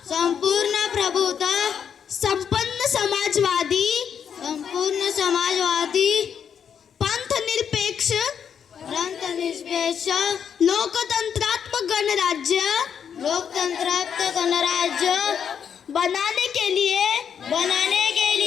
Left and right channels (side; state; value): right; quieter; 7.8 dB